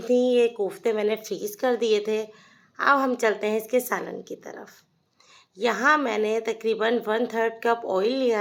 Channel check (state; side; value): identical; both; correlation 1.00